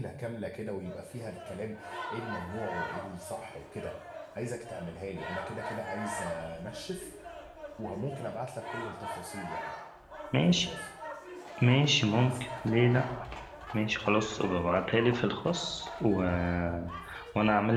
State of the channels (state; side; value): identical; both; correlation 1.00